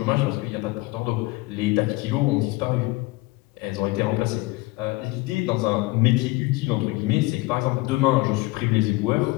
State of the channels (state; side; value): quieter; right; 21.7 dB